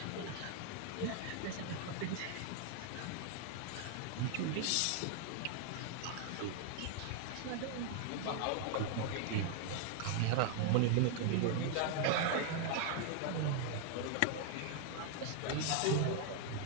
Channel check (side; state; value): both; different; correlation 0.00